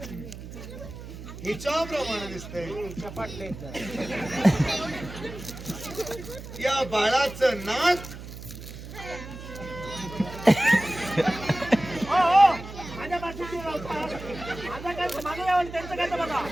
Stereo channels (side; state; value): right; noise; hum, 12 dB below the sound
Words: हिच्या प्रमाणे दिसतंय. चपाटले या बाळाचं नाक माझ्या बाजूची माझा काय माझं यावं त्यांचं काय तर बघा.